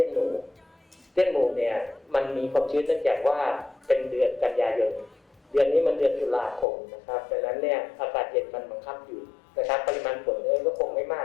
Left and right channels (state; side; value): drops out; right; at 6.7 s